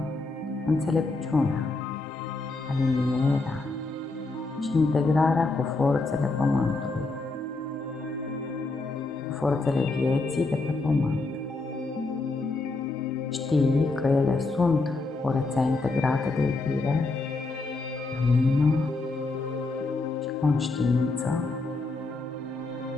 înțelepciunea, alinierea și integrarea cu forțele Pământului, cu forțele vieții de pe Pământ. Știi că ele sunt o rețea integrată de iubire, lumină și conștiință.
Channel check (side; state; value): right; quieter; 3.4 dB